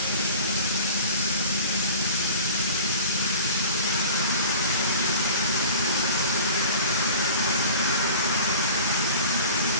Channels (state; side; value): inverted; both; correlation -0.41